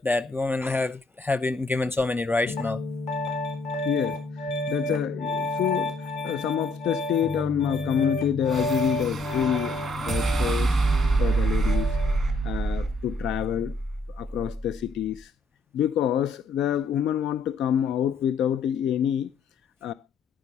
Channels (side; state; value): right; quieter; 3.2 dB